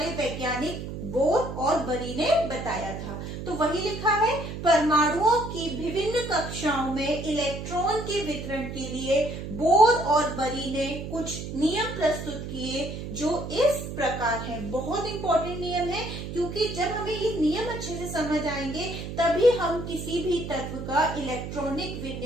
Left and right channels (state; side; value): noise; right; hum, 7 dB below the sound